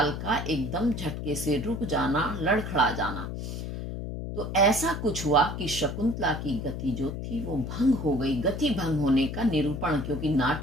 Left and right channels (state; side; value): noise; left; hum, 6 dB below the sound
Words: का एकदम झटके से रुक जाना, लड़खड़ा जाना। तो ऐसा कुछ हुआ कि शकुंतला की गति जो थी वो भंग हो गई। गति भंग होने का निरूपण, क्योंकि